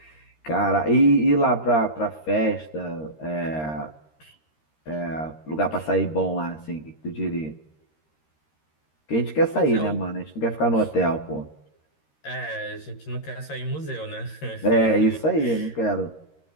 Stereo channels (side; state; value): right; late; 13 ms